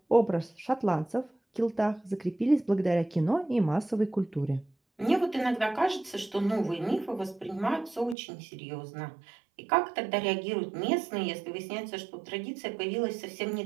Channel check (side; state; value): left; drops out; at 8.2 s